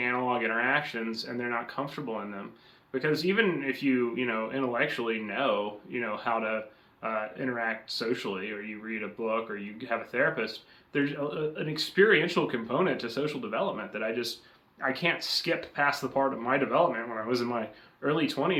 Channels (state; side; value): identical; both; correlation 1.00